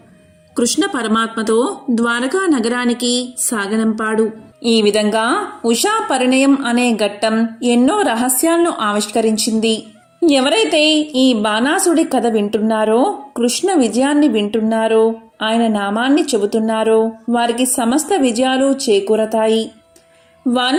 కృష్ణ పరమాత్మతో ద్వారకా నగరానికి సాగనంపాడు. ఈ విధంగా ఉషా పరిణయం అనే ఘట్టం ఎన్నో రహస్యాలను ఆవిష్కరించింది. ఎవరైతే ఈ బాణాసుడి కథ వింటున్నారో, కృష్ణ విజయాన్ని వింటున్నారో, ఆయన నామాన్ని చెబుతున్నారో వారికి సమస్త విజయాలు చేకూరతాయి.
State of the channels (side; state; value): both; identical; correlation 1.00